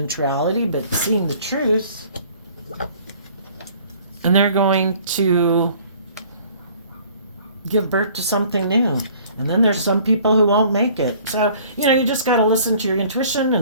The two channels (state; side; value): inverted; both; correlation -0.53